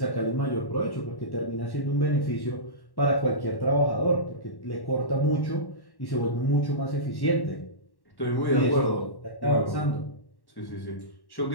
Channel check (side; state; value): right; late; 1.1 ms